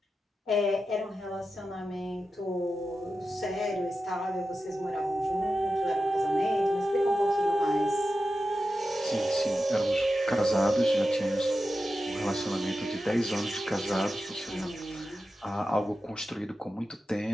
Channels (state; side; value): normal; both; correlation 0.91